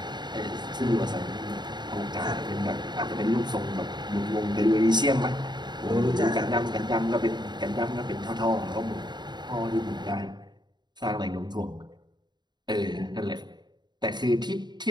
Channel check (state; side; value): late; left; 0.21 ms